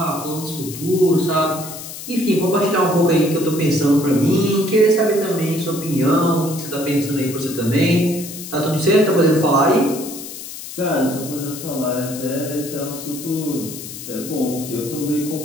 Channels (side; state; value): left; noise; hiss, 11 dB below the sound